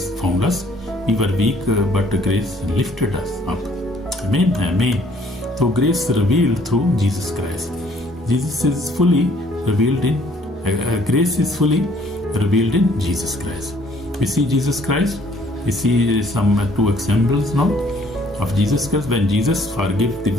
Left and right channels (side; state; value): both; normal; correlation 0.61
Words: found us. We were weak, but grace lifted us up. Amen. Amen. So grace revealed through Jesus Christ. Jesus is fully revealed in grace is fully revealed in Jesus Christ. We see Jesus Christ. We see some two examples now of Jesus Christ. When Jesus forgave the